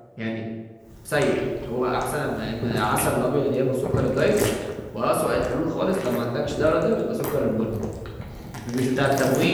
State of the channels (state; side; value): identical; both; correlation 1.00